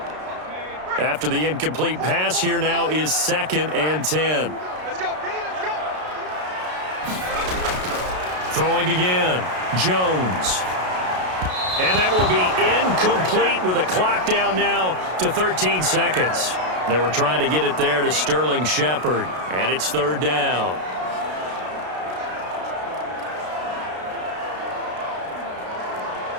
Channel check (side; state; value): left; late; 33 ms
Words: After the incomplete pass, here now is 2nd and 10. Let's go, let's go. Throwing again, Jones. And that will be incomplete with a clock down now to 13 seconds. They were trying to get it there to Sterling Shepard, and it's 3rd down.